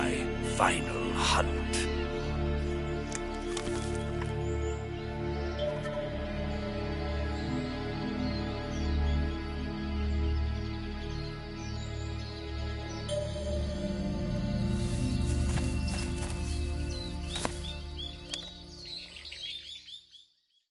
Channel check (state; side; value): identical; both; correlation 1.00